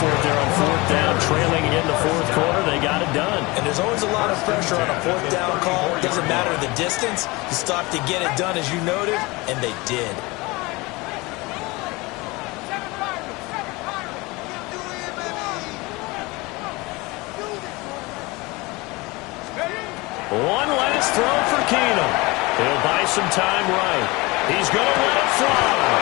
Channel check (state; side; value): quieter; right; 23.7 dB